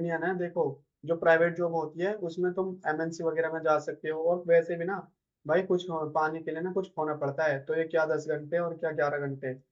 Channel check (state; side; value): identical; both; correlation 1.00